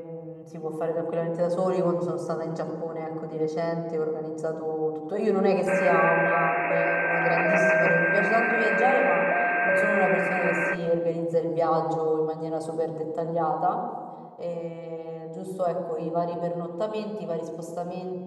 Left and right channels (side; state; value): both; identical; correlation 1.00